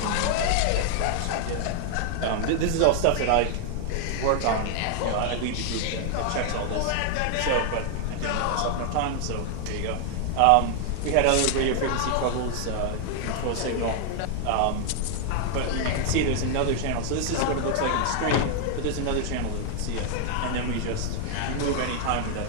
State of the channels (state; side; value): different; both; correlation 0.00